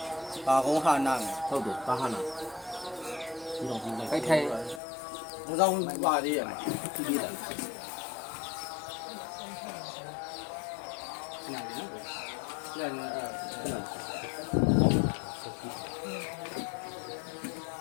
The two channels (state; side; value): drops out; right; at 4.8 s